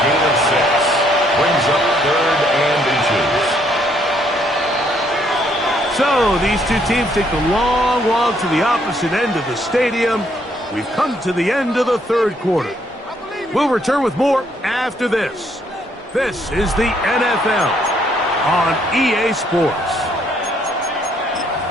gain of 6. Brings up 3rd and inches. So these two teams take the long walk to the opposite end of the stadium. We've come to the end of the third quarter. We'll return with more after this. This is the NFL on EA Sports.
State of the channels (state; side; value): normal; both; correlation 0.69